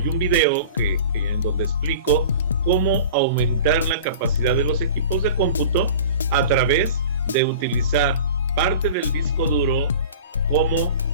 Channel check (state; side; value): inverted; both; correlation -0.40